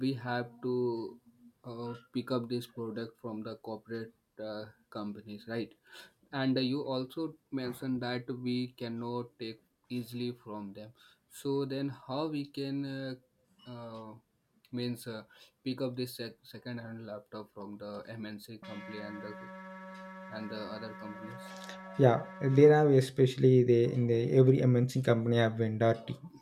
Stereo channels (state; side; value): identical; both; correlation 1.00